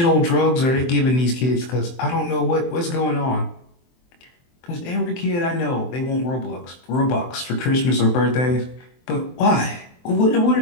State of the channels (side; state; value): right; late; 23 ms